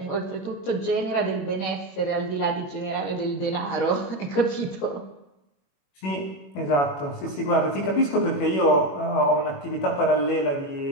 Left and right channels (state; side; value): late; right; 21 ms